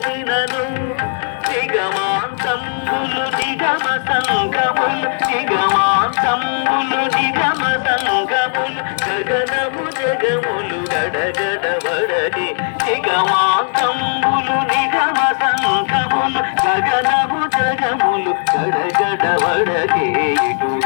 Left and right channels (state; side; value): silent; right; digital silence